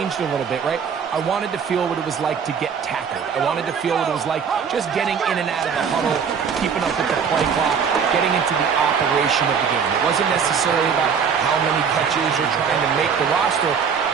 a little bit, right? I wanted to feel what it was like to get tackled. I wanted to feel what it was like just getting in and out of the huddle, keeping up with the play clock, getting into the operation of the game. It wasn't necessarily about how many catches or trying to make the roster,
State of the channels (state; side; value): quieter; left; 6.6 dB